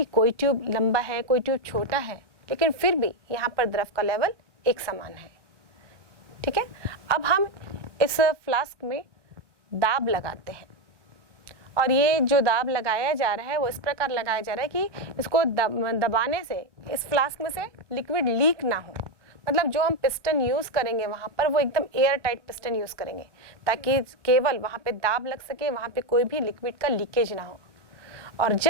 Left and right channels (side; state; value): left; late; 1.1 ms